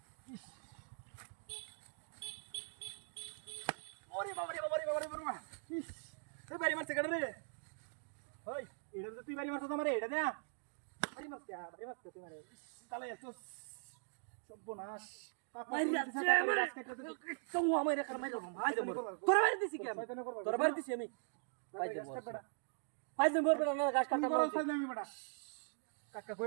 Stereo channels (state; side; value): silent; left; digital silence